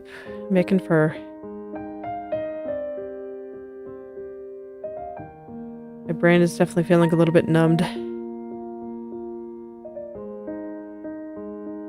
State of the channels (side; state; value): both; identical; correlation 1.00